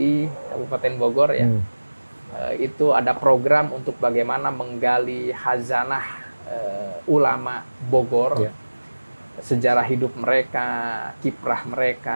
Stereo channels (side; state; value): both; inverted; correlation -1.00